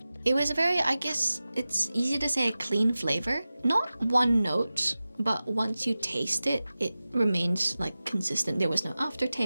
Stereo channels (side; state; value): both; inverted; correlation -0.96